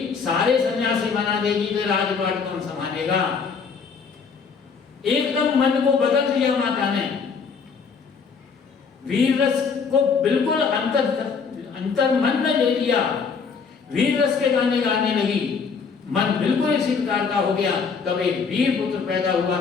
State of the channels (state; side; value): quieter; right; 5.6 dB